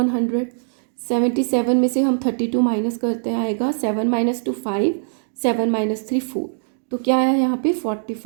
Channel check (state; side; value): silent; left; digital silence